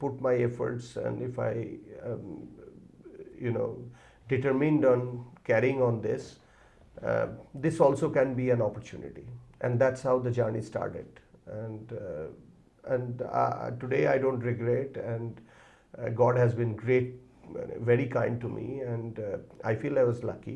my efforts, and if I um, you know determined on carrying on this, uh, this also can be an opportunity, and that's how the journey started. And today I don't regret, and God has been great, very kind to me, and I feel I was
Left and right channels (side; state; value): both; identical; correlation 1.00